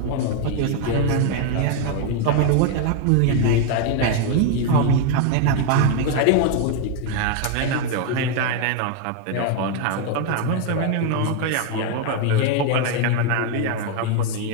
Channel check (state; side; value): different; both; correlation 0.00